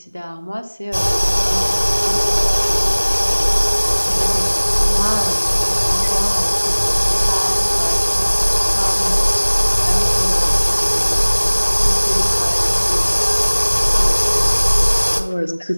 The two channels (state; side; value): inverted; both; correlation -1.00